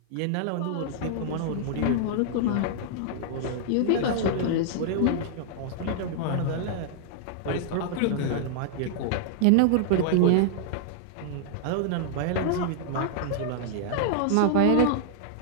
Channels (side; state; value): both; different; correlation -0.01